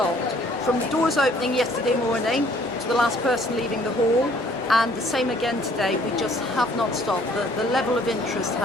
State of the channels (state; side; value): normal; both; correlation 0.59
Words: From the doors opening yesterday morning to the last person leaving the hall, and the same again today, we just have not stopped. The level of interest